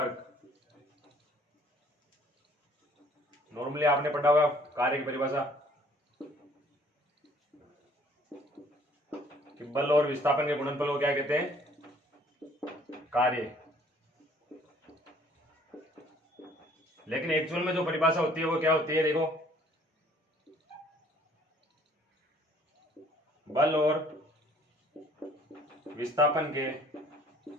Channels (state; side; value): normal; both; correlation 0.58